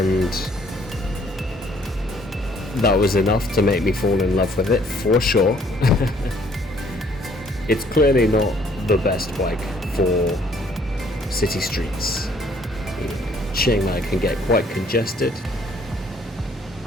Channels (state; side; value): normal; both; correlation 0.62